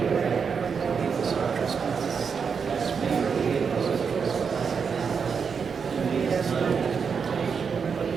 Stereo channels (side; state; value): left; quieter; 6.1 dB